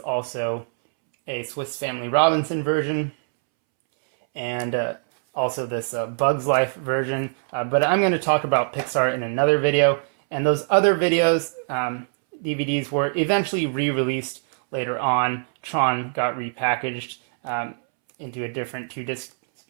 also a Swiss Family Robinson version, and also this Bugs Life version. But I'm going to talk about Pixar in another video. And those other videos, DVDs, were eventually re-released later on. Tron got repackaged into a different two-disc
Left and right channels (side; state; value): left; silent; 63 dB below the other